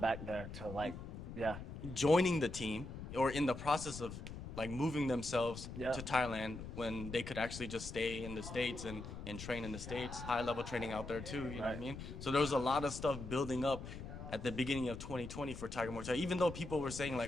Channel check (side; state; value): left; noise; rumble, 9 dB below the sound